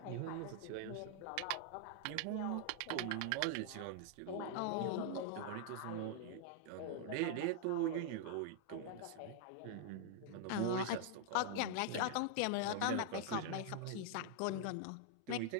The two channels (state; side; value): different; both; correlation -0.01